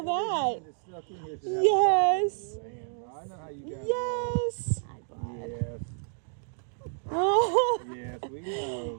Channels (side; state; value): left; silent; digital silence